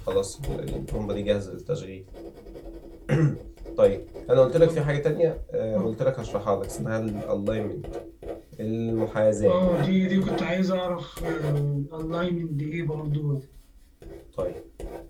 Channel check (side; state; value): both; identical; correlation 1.00